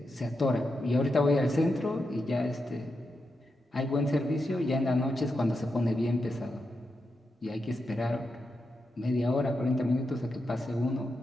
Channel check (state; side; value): normal; both; correlation 0.86